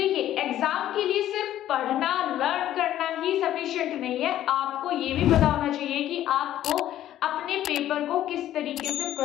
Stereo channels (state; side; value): quieter; right; 12.5 dB